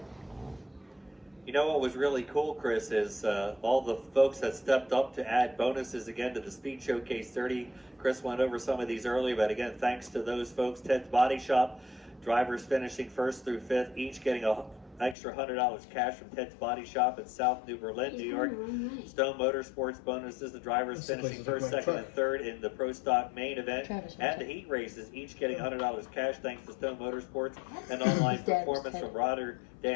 You know what was really cool, Chris, is all the folks that stepped up to add bonuses again to the Speed Showcase 30. Chris went over some of these earlier, but again, thanks to those folks, Ted's Body Shop, drivers finishing 1st through 5th, each getting extra $100 cash from Ted's Body Shop in South New Berlin, He's New going York. the wrong way. Stone Motorsports bonuses. The drivers That's the finishing place to first, take my second, truck. and third in the Pro Stock main event. Travis And wants the it. heat races, each getting $100 cash thanks to Stone Motorsports and That's online His dad was performance Ted. from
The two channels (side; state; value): right; drops out; at 15.2 s